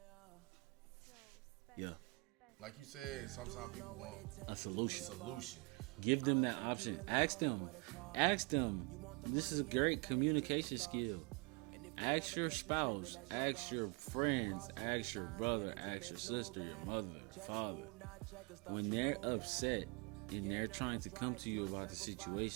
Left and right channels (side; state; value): left; quieter; 30.2 dB